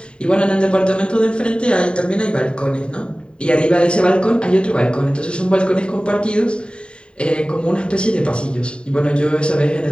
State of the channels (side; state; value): right; late; 0.052 ms